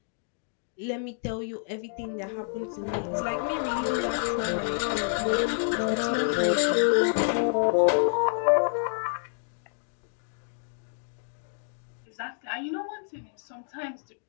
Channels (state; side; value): silent; right; digital silence